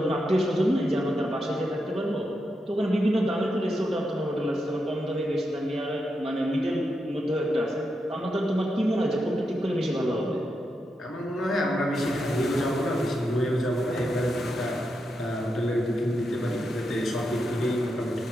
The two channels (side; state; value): both; normal; correlation 0.85